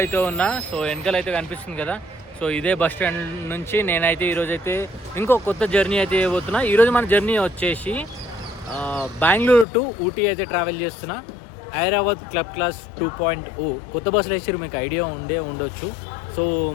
అయితే ఉన్నా. సో వెనకాల అయితే కనిపిస్తుంది కదా, సో ఇదే బస్ స్టాండ్ నుంచి నేనైతే ఈరోజైతే ఇంకో కొత్త జర్నీ అయితే చేయబోతున్నా. ఈరోజు మన జర్నీ వచ్చేసి బెంగళూరు టు ఊటీ అయితే ట్రావెల్ చేస్తున్నా. హైదరాబాద్ క్లబ్ క్లాస్ 2.0 కొత్త బస్సులు వేసారు, మీకు ఐడియా ఉండొచ్చు. సో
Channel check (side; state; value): right; drops out; at 9.7 s